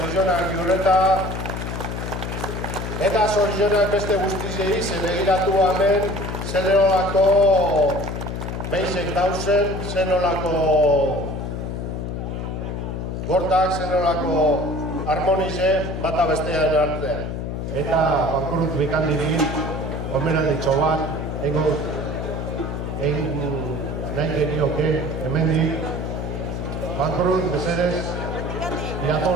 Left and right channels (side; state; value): left; noise; hum, 4 dB below the sound